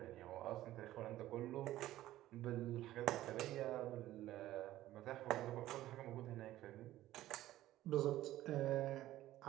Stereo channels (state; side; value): quieter; left; 14.7 dB